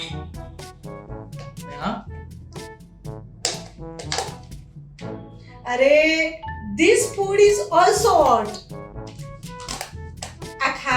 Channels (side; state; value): both; identical; correlation 1.00